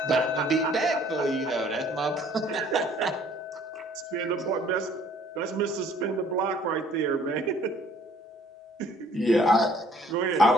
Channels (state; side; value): normal; both; correlation 0.58